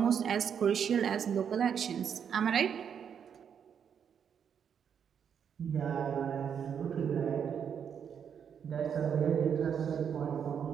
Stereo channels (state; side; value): quieter; left; 7.7 dB